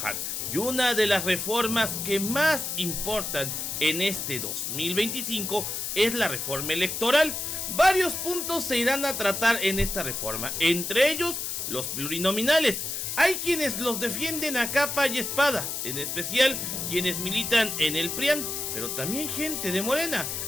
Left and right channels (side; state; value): left; noise; hiss, 3 dB below the sound